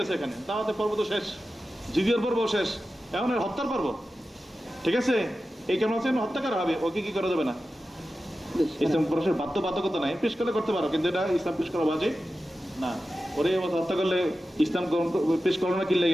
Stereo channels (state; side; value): normal; both; correlation 0.93